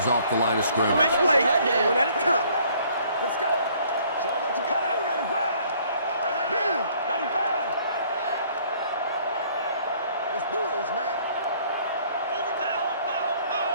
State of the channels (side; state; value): both; inverted; correlation -0.60